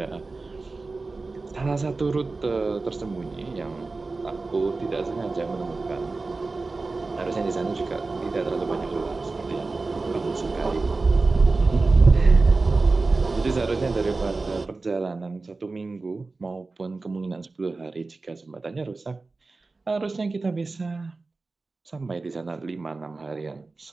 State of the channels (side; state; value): left; quieter; 3.7 dB